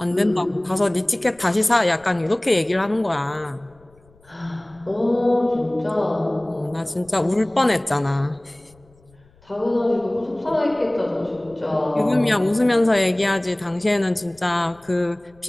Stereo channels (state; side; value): noise; left; rumble, 30 dB below the sound